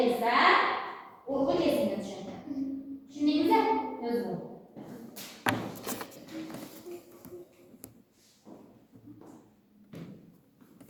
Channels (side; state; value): both; identical; correlation 1.00